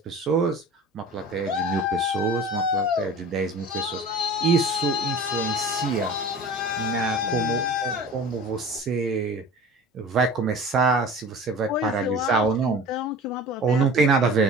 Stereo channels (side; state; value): both; normal; correlation 0.39